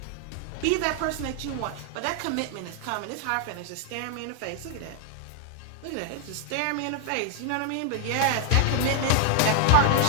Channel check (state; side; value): different; both; correlation 0.00